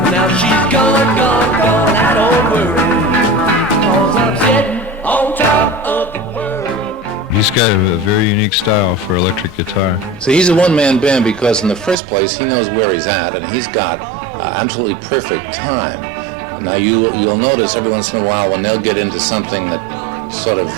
Now she's gone, I don't worry, 'cause I'm sitting on top of the world. He's got a very unique style for electric guitar. So he's a one-man band because in the first place he knows where he's at and he's got absolutely perfect time. Now you'll notice every once in a while when they'll get into something that sort of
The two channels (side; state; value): left; drops out; at 12.0 s